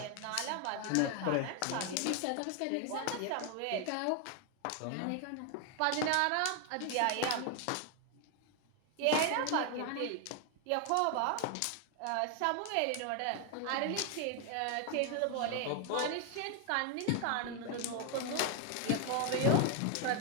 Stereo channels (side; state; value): both; different; correlation 0.01